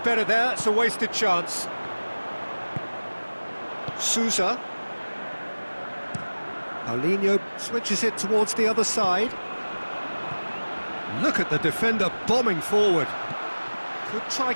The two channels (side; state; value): both; inverted; correlation -1.00